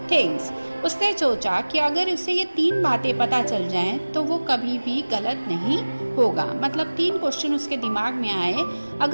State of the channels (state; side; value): inverted; both; correlation -1.00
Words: things. उसने सोचा कि अगर उसे ये 3 बातें पता चल जाएं तो वो कभी भी गलत नहीं होगा. मतलब 3 क्वेश्चन उसके दिमाग में आए,